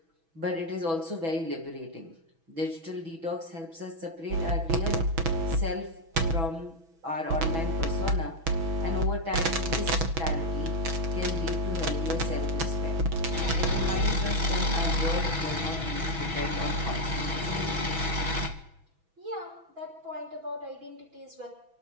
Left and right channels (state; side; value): late; left; 6.1 ms